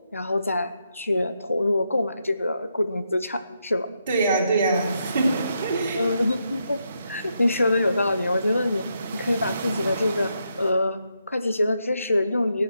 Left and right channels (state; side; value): inverted; both; correlation -0.81